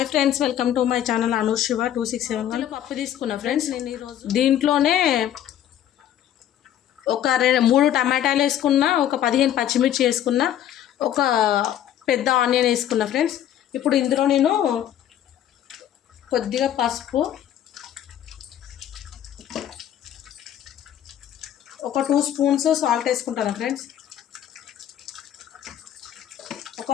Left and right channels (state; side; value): quieter; right; 11.0 dB